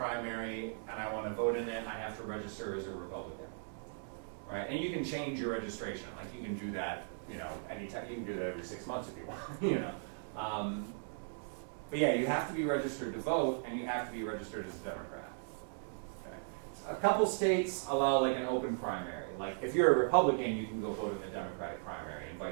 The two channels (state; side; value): silent; left; digital silence